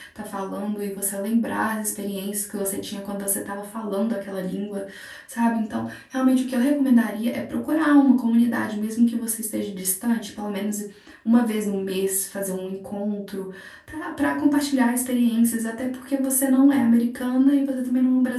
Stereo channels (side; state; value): both; identical; correlation 1.00